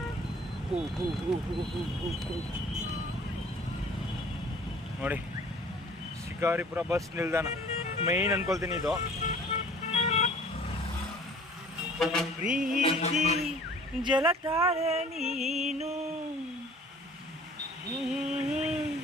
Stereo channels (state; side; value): normal; both; correlation 0.50